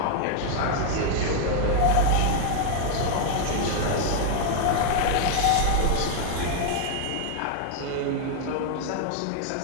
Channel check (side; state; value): both; different; correlation 0.00